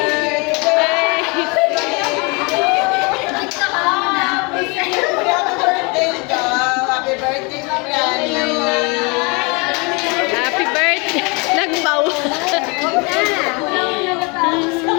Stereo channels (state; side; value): quieter; right; 29.7 dB